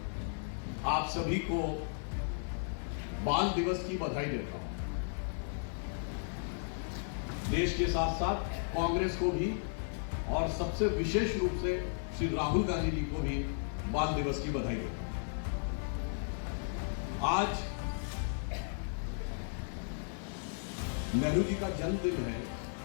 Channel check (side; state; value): right; silent; digital silence